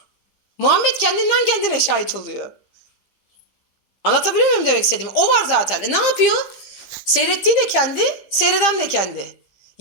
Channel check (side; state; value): right; late; 15 ms